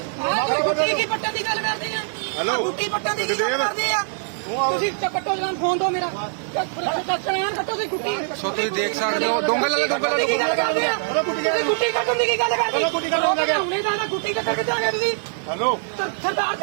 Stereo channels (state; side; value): silent; left; 64 dB below the other